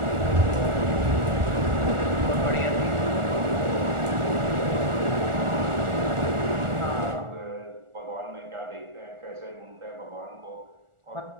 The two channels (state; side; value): late; left; 1.4 ms